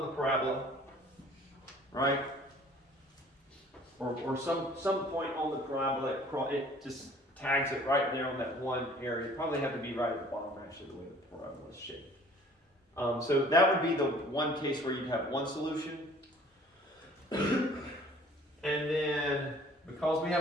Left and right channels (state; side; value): normal; both; correlation 0.52